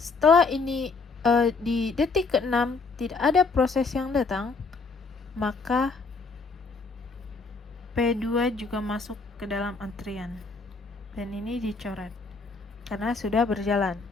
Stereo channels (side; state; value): right; quieter; 4.2 dB